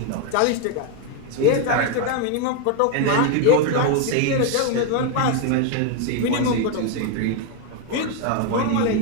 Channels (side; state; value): both; different; correlation 0.01